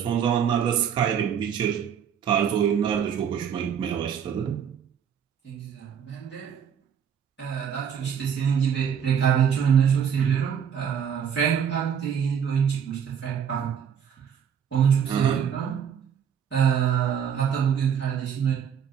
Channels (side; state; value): left; quieter; 8.0 dB